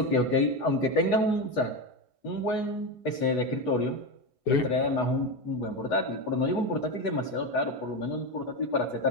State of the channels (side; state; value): right; late; 8.1 ms